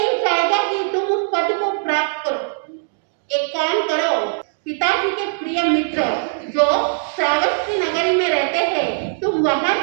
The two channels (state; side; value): silent; left; digital silence